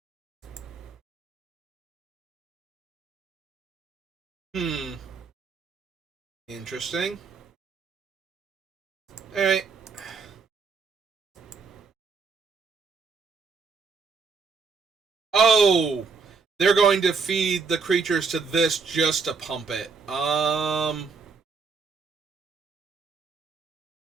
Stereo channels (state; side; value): quieter; left; 4.8 dB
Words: Interesting. Alright. Oh! They're going to feed the creatures to this just to pump it.